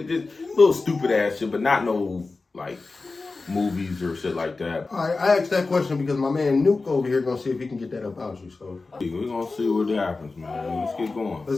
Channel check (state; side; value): quieter; right; 3.8 dB